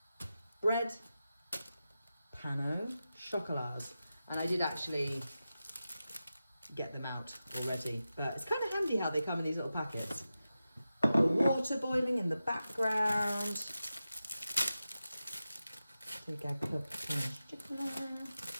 bread, pain au chocolats, and I did actually get them out already, but it's kind of handy how they come in these little packets. The water boiling in the background. Take our cup of pain au chocolat.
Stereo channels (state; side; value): inverted; both; correlation -0.92